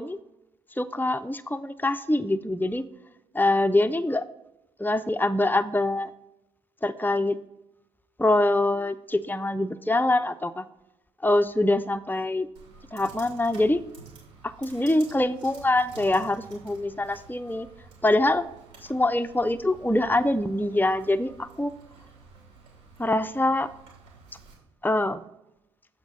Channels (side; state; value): both; normal; correlation 0.88